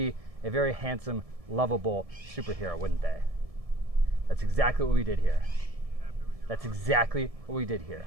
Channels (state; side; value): late; left; 1.7 ms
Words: a very handsome, lovable superhero, wouldn't they? That's exactly what we did here. That's exactly what we did here.